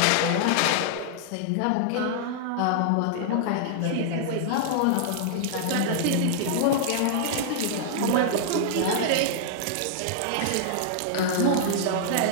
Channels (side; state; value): both; different; correlation -0.01